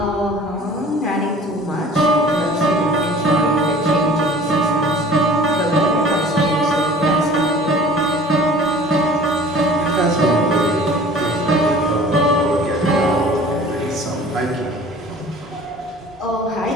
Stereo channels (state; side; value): normal; both; correlation 0.47